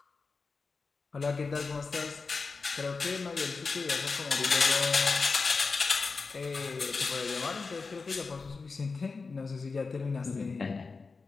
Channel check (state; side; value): quieter; right; 4.4 dB